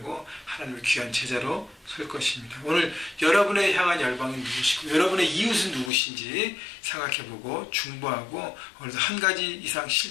하나님의 귀한 제자로 설 것입니다. 오늘 여러분의 향한 열방은 누구시고 여러분의 이웃은 누구신지 생각해보고 중보하고 오늘도 한 가지 이상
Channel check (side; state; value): right; drops out; at 5.9 s